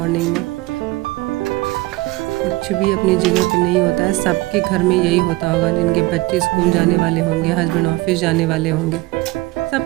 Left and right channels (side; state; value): left; quieter; 21.0 dB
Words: में। कुछ भी अपनी जगह पे नहीं होता है। सबके घर में यही होता होगा, जिनके बच्चे स्कूल जाने वाले होंगे, हस्बैंड ऑफिस जाने वाले होंगे,